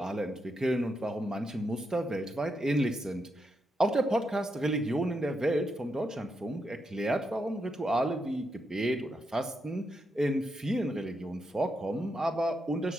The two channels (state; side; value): normal; both; correlation 0.83